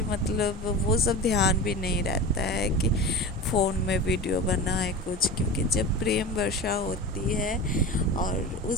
मतलब वो सब ध्यान भी नहीं रहता है कि फ़ोन में वीडियो बनाए कुछ। क्योंकि जब प्रेम वर्षा होती है, और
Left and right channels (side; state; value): both; normal; correlation 0.31